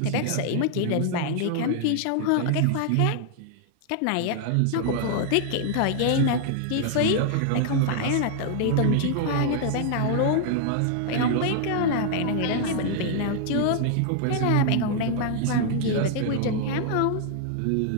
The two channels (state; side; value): different; both; correlation 0.00